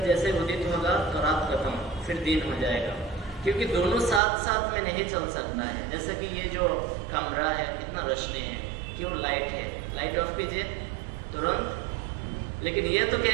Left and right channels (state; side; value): drops out; left; at 4.2 s